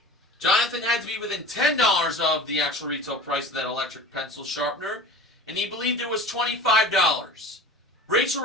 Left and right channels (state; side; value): normal; both; correlation 0.37